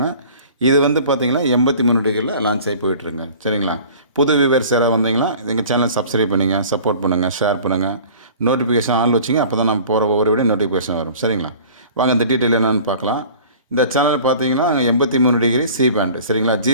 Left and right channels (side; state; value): both; inverted; correlation -0.45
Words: இது வந்து பார்த்திங்கன்னா 83 டிகிரியில் லான்ச் ஆகி போயிட்டுருங்க. சரிங்களா? புது வியூவர்ஸ் யாராவது வந்தீங்கன்னா எங்கள் சேனலை சப்ஸ்கிரைப் பண்ணிங்க, சப்போர்ட் பண்ணுங்கள், ஷேர் பண்ணுங்கள், நோட்டிஃபிகேஷன் ஆன் வச்சிங்க. அப்போ தான் நம்ம போகிற ஒவ்வொரு வீடியோ நோட்டிஃபிகேஷன் வரும். சரிங்களா? வாங்க இந்த டீட்டெயில் என்னென்னு பார்க்கலாம். இந்த சேனல் பார்த்தீங்கன்னா 83 டிகிரி சி பேண்ட். சரிங்களா?